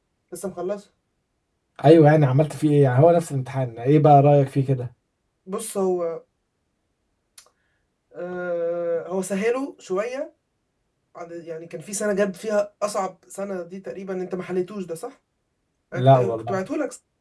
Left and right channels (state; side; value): identical; both; correlation 1.00